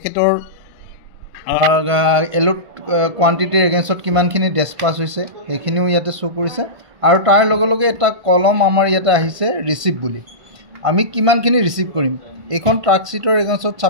এলোট কোৱান্টিটিৰ এগেইনষ্টত কিমানখিনি ডিছপাছ হৈছে সেইখিনিও ইয়াতে শ্ব' কৰিছে। আৰু তাৰ লগে লগে এটা কলম আমাৰ ইয়াতে আহিছে ৰিচিপ্ট বুলি। আমি কিমানখিনি ৰিচিভ কৰিম, এইখন ট্ৰাক শ্বীটৰ এগেইনষ্টত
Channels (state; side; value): late; left; 1.5 ms